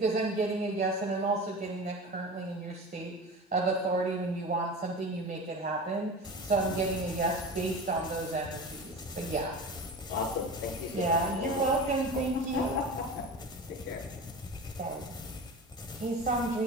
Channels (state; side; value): normal; both; correlation 0.32